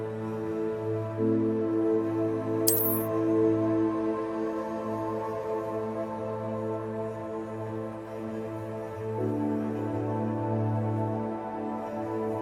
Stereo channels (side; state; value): right; noise; hum, 29 dB below the sound